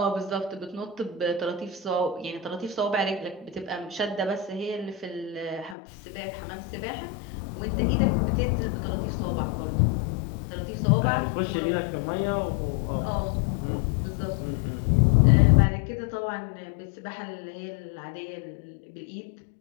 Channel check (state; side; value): drops out; right; at 5.8 s